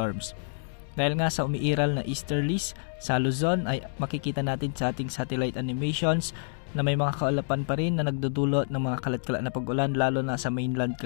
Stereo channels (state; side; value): silent; right; digital silence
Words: Dahil nga sa umiiral na easterlies sa Luzon ay makikita natin sa ating satellite animations na may mga kaulapan pa rin na nagdudulot ng mga kalat-kalat na pag-ulan lalo na sa mainland